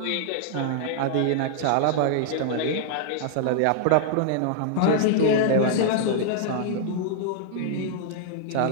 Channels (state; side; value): different; both; correlation -0.01